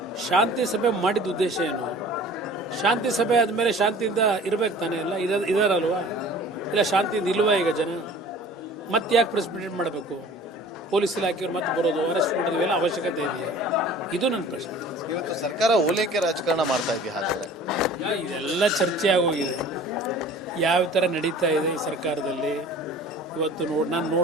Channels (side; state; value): both; normal; correlation 0.45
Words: ಶಾಂತಿ ಸಭೆ ಮಾಡಿದ ಉದ್ದೇಶ ಏನು? ಶಾಂತಿ ಸಭೆ ಆದಮೇಲೆ ಶಾಂತಿಯಿಂದ ಇರಬೇಕು ತಾನೇ? ಎಲ್ಲ ಇದಾರಲ್ವಾ? ಇಲ್ಲ ಶಾಂತಿಯಿಂದ ಇಲ್ವಾ ಈಗ ಜನ? ಮತ್ತೆ ಯಾಕೆ ಪ್ರೆಸ್ ಮೀಟ್ ಮಾಡಬೇಕು? ಪೊಲೀಸ್ ಇಲಾಖೆಯವ್ರು ಮತ್ತೆ ಬರೋದು, ಅರೆಸ್ಟ್ ಮಾಡೋದು, ಇವೆಲ್ಲ ಅವಶ್ಯಕತೆ ಇದೆಯಾ? ಇದು ನನ್ನ ಪ್ರಶ್ನೆ. ಇವತ್ತು ಸರ್ಕಾರ ಓಲೈಕೆ ರಾಜಕಾರಣ ಮಾಡ್ತಾ ಇದೆಯಾ? ಹಾಗಾದ್ರೆ ಇದೆಲ್ಲ ಚರ್ಚೆ ಆಗೋಗಿದೆ. ಯಾವ ಥರ ನಡೀತಾ ಇದೆ ಈ ಸರ್ಕಾರದಲ್ಲಿ. ಇವತ್ತು ನಾನು